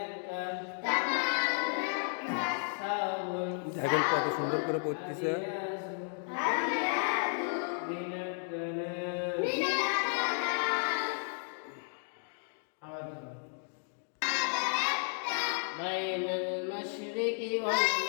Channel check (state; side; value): silent; right; 56 dB below the other